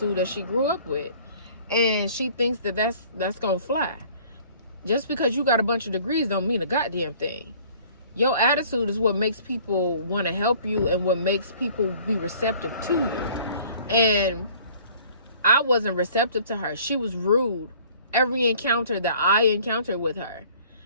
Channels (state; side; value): inverted; both; correlation -0.52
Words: that she grew up with. And she thinks that that's gonna fly. Just because you got a bunch of degrees don't mean a goddamn thing. Your attitude is what makes people want to help you and what makes people be receptive to you. And I wasn't receptive to her. She was rude every encounter that I encountered with her.